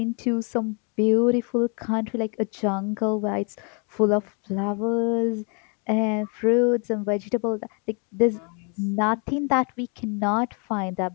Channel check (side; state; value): right; quieter; 36.9 dB